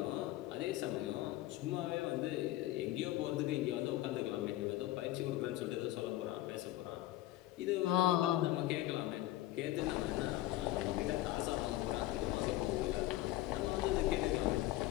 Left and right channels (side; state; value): right; quieter; 15.5 dB